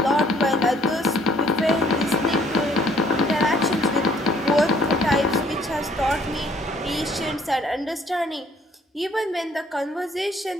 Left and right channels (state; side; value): normal; both; correlation 0.60